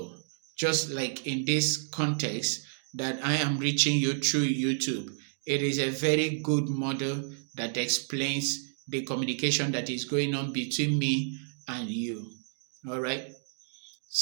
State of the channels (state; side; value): silent; left; digital silence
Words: just like in this context that I am reaching you through YouTube. It is a very good model that explains the communication that is going on between me and you. All right.